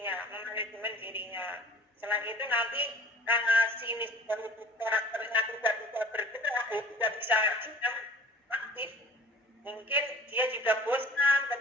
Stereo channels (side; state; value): both; normal; correlation 0.47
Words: memanajemen dirinya. Selain itu nanti karena sinis dan karakternya tidak bisa bergerak, tidak bisa aktif, mungkin dia juga bosan